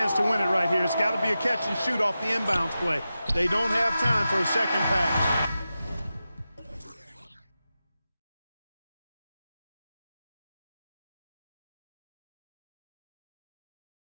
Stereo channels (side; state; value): both; inverted; correlation -0.92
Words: to win it right here. It's got to be a catch and shoot off the inbounds play. They don't have time for a second pass.